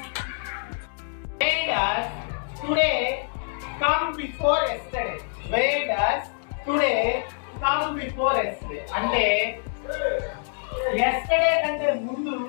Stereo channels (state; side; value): silent; right; digital silence